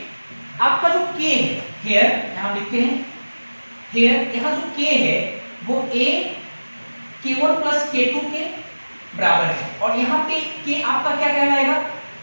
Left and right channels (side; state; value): both; inverted; correlation -1.00